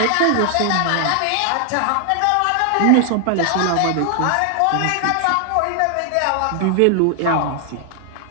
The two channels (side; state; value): both; different; correlation 0.00